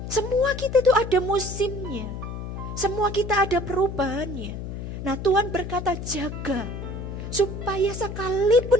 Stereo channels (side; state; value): left; noise; hum, 7 dB below the sound